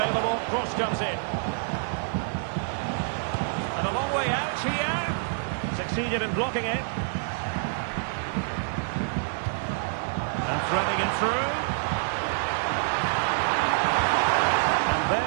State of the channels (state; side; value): silent; left; digital silence